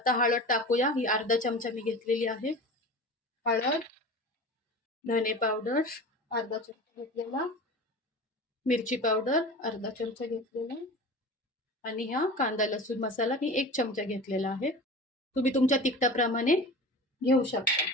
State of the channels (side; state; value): both; normal; correlation 0.34